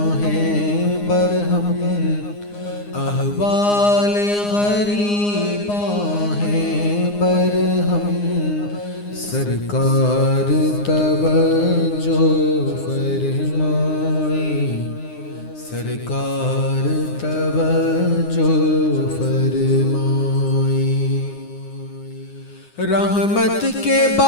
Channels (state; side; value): late; right; 9.7 ms